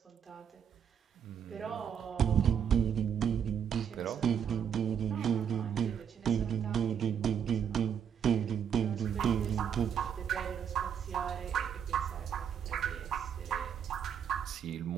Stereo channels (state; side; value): quieter; left; 8.1 dB